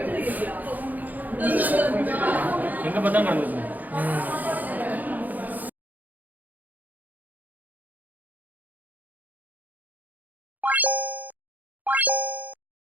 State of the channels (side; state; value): left; late; 0.082 ms